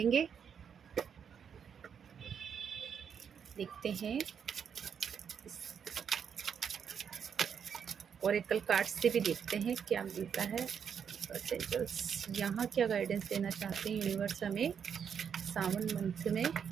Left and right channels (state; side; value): quieter; left; 7.4 dB